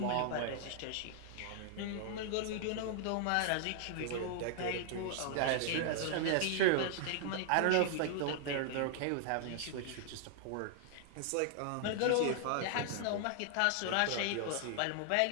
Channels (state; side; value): different; both; correlation -0.01